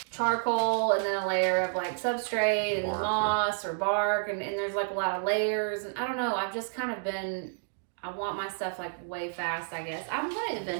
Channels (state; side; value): silent; left; digital silence